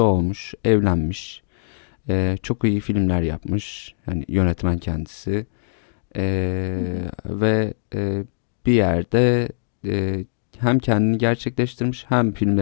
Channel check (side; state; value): right; silent; digital silence